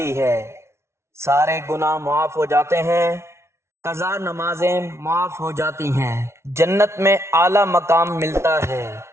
ہے، سارے گناہ معاف ہو جاتے ہیں، قضا نمازیں معاف ہو جاتی ہیں، جنت میں اعلیٰ مقام ملتا ہے۔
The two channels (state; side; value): late; left; 0.13 ms